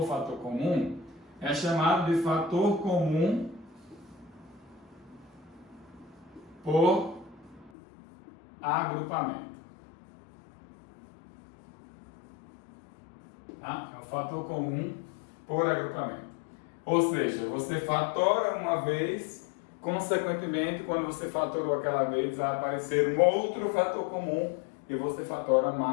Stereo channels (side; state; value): right; drops out; at 7.7 s